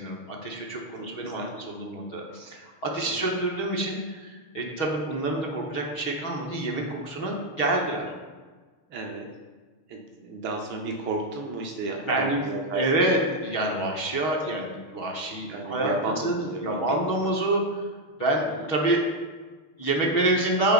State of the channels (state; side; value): late; right; 6.3 ms